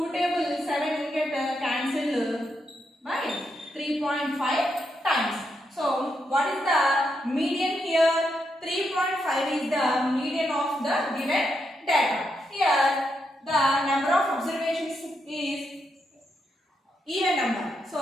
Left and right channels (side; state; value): both; normal; correlation 0.82